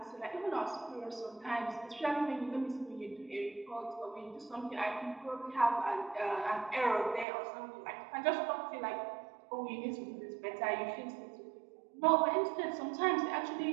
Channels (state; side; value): drops out; left; at 7.2 s